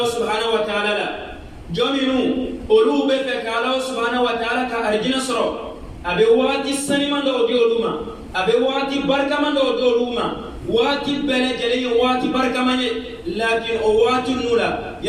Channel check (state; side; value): identical; both; correlation 1.00